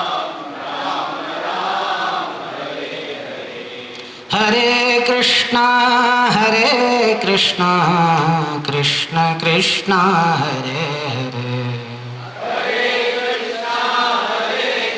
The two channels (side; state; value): both; identical; correlation 1.00